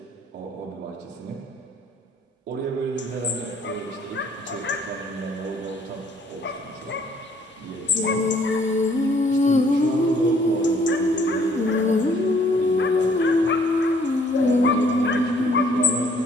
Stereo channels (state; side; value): normal; both; correlation 0.62